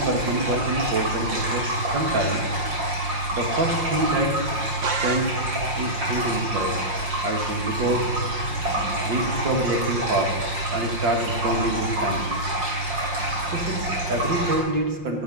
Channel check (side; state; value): left; late; 5.7 ms